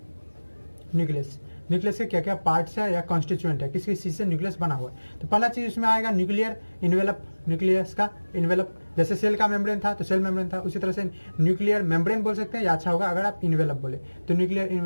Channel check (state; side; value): inverted; both; correlation -1.00